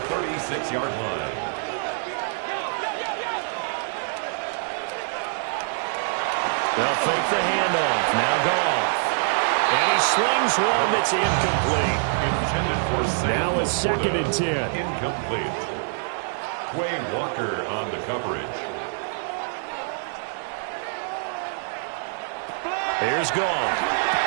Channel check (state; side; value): silent; left; 61 dB below the other